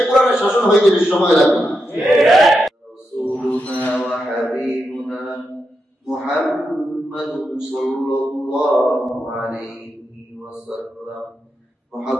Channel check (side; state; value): both; normal; correlation 0.86